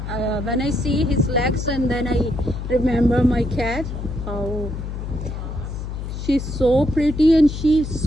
when I see his legs, and then I remember my cat. Oh, she's so pretty, and she's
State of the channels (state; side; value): noise; left; hum, 6 dB below the sound